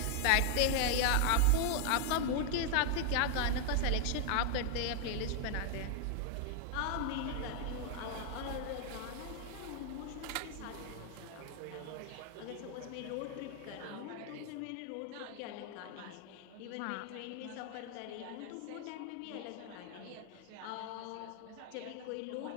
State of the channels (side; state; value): both; different; correlation 0.00